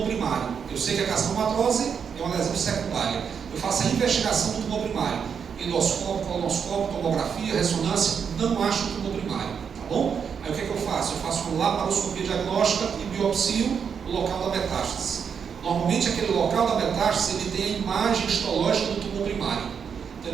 primário. Eu sei que a carcinomatose é uma lesão secundária. Eu faço a investigação do tumor primário. Endoscópio, colonoscópio, tomografia, ressonância, não acho o tumor primário, tá bom? Aí o que é que eu faço? Eu faço uma laparoscopia diagnóstica e biopsio o local da metástase. Normalmente aquele local da metástase ele tem a imagem histológica do tumor primário. Então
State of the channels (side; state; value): left; quieter; 6.9 dB